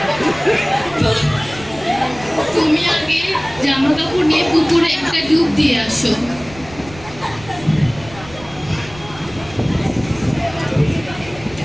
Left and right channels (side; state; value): right; noise; rumble, 18 dB below the sound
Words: তুমি আগে জামা কাপড় নিয়ে পুকুরে একটা ডুব দিয়ে আসো।